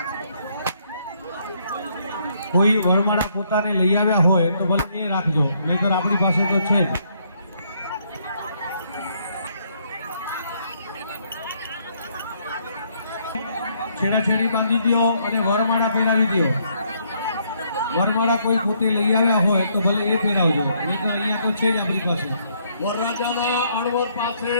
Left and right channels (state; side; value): inverted; both; correlation -0.70